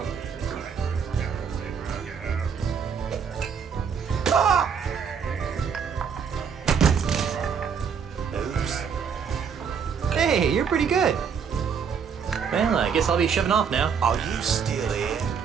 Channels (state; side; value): quieter; left; 6.7 dB